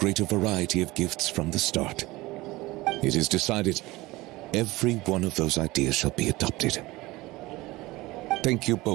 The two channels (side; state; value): left; quieter; 20.1 dB